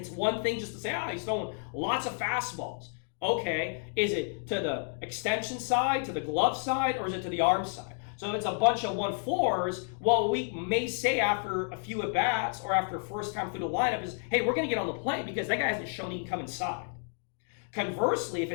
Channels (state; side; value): silent; right; 57 dB below the other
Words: one thing just to say, he's throwing lots of fastballs. Okay, is it to the extension side, to the glove side, or is it to the arm side? So if it's a bunch of 1-4s, well, we may say after a few at-bats or after first time through the lineup is, hey, we're going to get on the plate because that guy hasn't shown he can come inside. Conversely, if